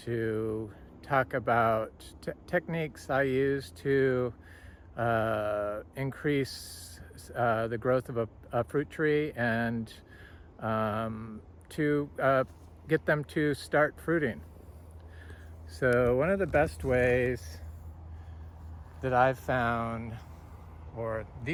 talk about techniques I use to increase the growth of a fruit tree and to get them to start fruiting. So one of the best ways that I've found, or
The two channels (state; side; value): identical; both; correlation 1.00